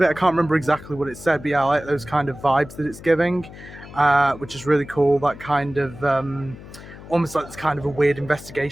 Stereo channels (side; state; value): left; noise; hum, 16 dB below the sound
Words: it. I can't remember exactly what it said, but yeah, I like those kind of vibes that it's giving, which is really cool. That kind of almost like this kind of a weird